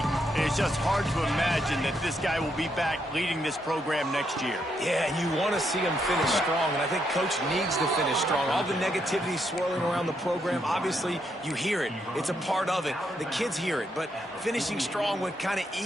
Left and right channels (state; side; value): normal; both; correlation 0.78